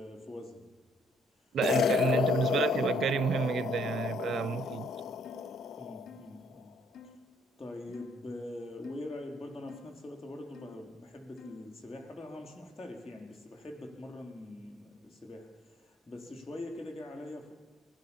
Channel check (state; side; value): normal; both; correlation 0.65